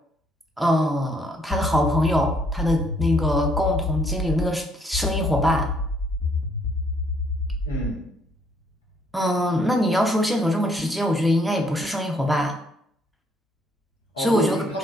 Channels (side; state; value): both; normal; correlation 0.67